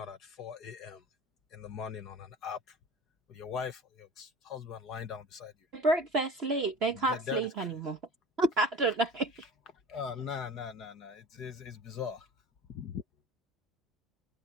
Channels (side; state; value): both; normal; correlation 0.39